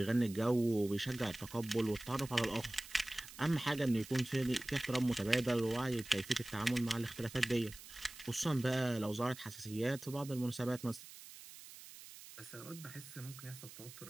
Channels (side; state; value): right; noise; hiss, 16 dB below the sound